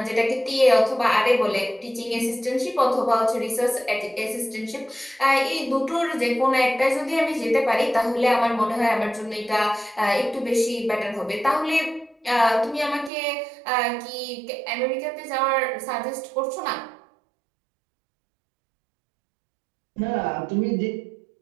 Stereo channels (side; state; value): left; drops out; at 13.1 s